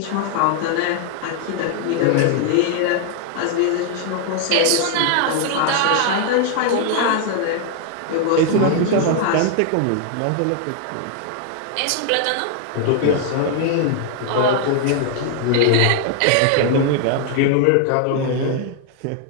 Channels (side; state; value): both; different; correlation 0.00